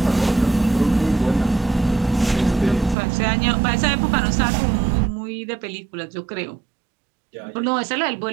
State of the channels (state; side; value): drops out; left; at 3.0 s